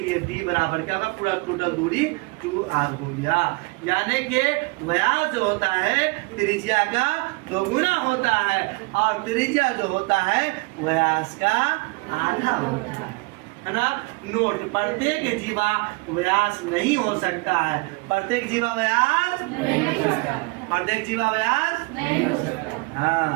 d बराबर क्या होगा? पूरा टोटल दूरी 2r हो गया। यानी कि व्यास जो होता है त्रिज्या का 2 गुना होता है, और त्रिज्या जो होता है व्यास का आधा होता है ना। नोट, प्रत्येक जीवा व्यास नहीं हो सकता है। प्रत्येक जीवा व्यास नहीं हो सकता। प्रत्येक जीवा व्यास नहीं हो सकता।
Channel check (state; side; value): quieter; left; 26.7 dB